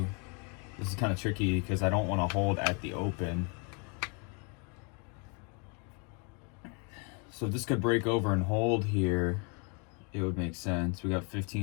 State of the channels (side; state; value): right; quieter; 35.1 dB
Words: This is kind of tricky because I don't want to hold at the open. So if this could break over and hold here, it would make sense. We got